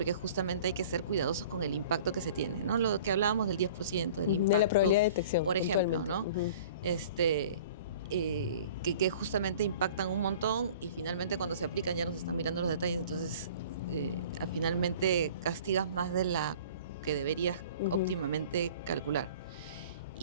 justamente hay que ser cuidadosos con el impacto que se tiene, ¿no? Lo que hablábamos del 10%, del impacto. De la probabilidad de detección. Por ejemplo, ¿no? Que justamente impactan un montón y finalmente cuando se aplican ya nos están mirando los detalles, entonces finalmente castigas más de la que deberías óptimamente calcular.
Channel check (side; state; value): both; inverted; correlation -0.46